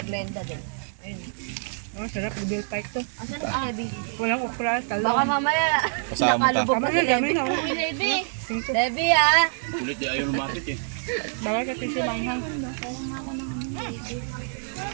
Glenda din. Ayun. Oh, sarap. Bill pike to. Asan si Levi? Walang okra, talong. Baka mamaya Kasama nakalubog pa si Levi. Dami, dami. Uy, Levi! Levi ah! Kulit di ayaw lumatik eh. Bawal ka tissue lang ha.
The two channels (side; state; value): left; silent; digital silence